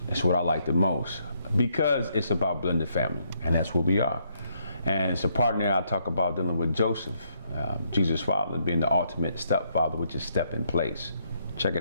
is what I like the most because it's about blended family, and that's what we are. And it's a part in there I talk about dealing with Joseph, Jesus' father, being the ultimate stepfather, which is step in place. Check it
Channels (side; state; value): both; inverted; correlation -0.73